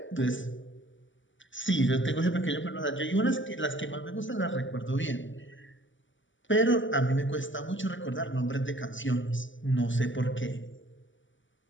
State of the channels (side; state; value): right; late; 0.55 ms